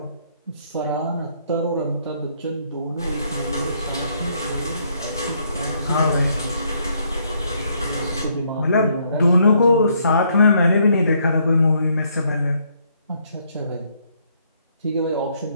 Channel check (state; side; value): inverted; both; correlation -0.70